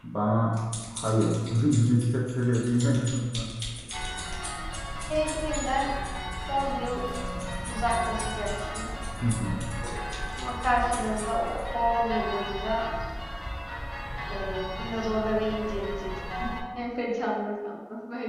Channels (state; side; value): identical; both; correlation 1.00